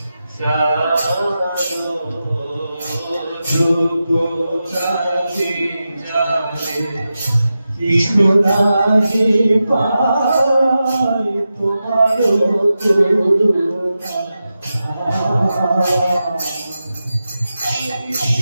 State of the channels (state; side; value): inverted; both; correlation -0.91